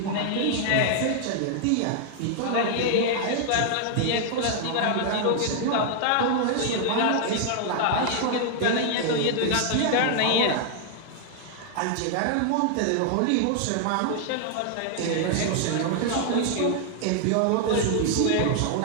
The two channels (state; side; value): different; both; correlation 0.00